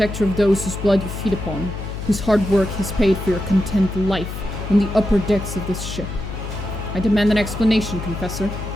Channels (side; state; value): left; noise; hum, 7 dB below the sound